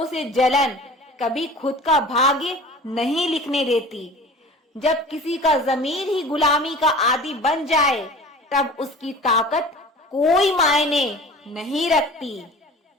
से जलन कभी खुद का भाग्य नहीं लिखने देती। जब किसी का ज़मीर ही गुलामी का आदी बन जाए तब उसकी ताकत कोई मायने नहीं रखती।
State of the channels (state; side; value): normal; both; correlation 0.41